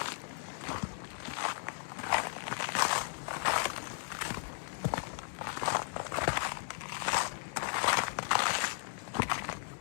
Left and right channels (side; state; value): right; silent; digital silence